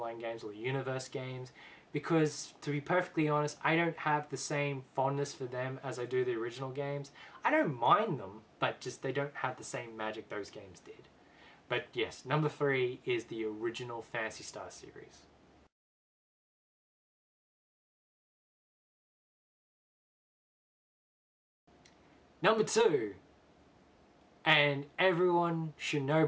games or the Universe games because, to be perfectly honest, I don't have the same fondness for them as I do the original games. I don't mind them, but just they don't have the same magic those games did. But yes, number 3 is the original Phantasy Star series. Number 2, and everyone should know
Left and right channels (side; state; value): both; identical; correlation 1.00